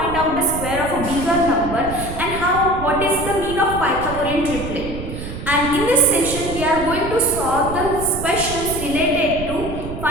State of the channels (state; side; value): noise; right; rumble, 8 dB below the sound